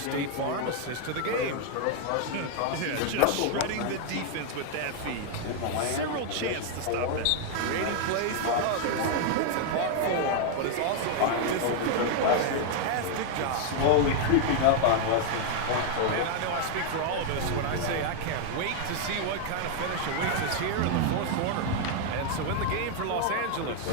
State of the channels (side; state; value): both; different; correlation 0.00